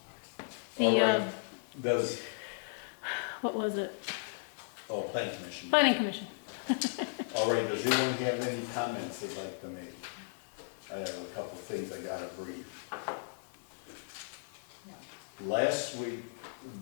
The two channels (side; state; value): right; silent; digital silence